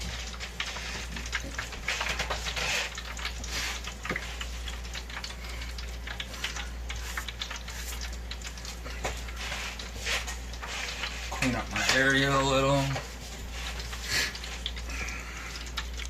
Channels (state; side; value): identical; both; correlation 1.00